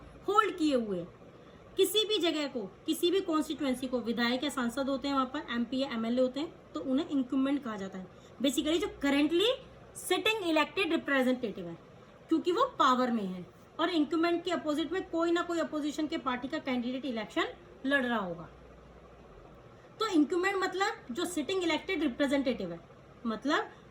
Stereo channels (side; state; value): both; identical; correlation 1.00